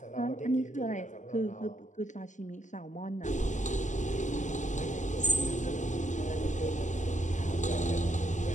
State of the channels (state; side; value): late; right; 0.36 ms